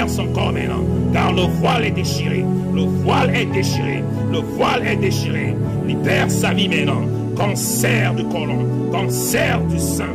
son corps maintenant. Car le voile est déchiré. Le voile est déchiré. Le voile est déchiré. Libère sa vie maintenant. Cancer du côlon, cancer du sein,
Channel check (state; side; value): identical; both; correlation 1.00